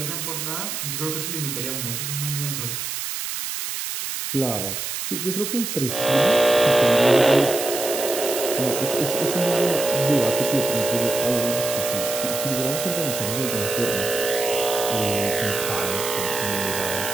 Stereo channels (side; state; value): right; noise; hiss, 4 dB below the sound